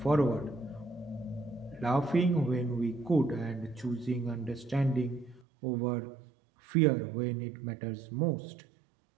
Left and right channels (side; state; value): left; drops out; at 5.5 s